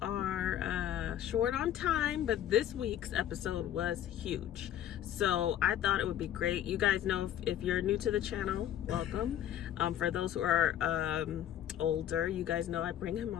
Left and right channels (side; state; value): right; quieter; 11.1 dB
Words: are short on time, but this week's episode was huge. So I thought it would be great. You guys know, if you're new to the channel, welcome. For those who are older, you guys know I bring him